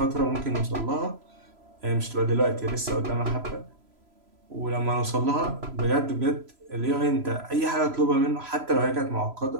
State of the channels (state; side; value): late; left; 3.0 ms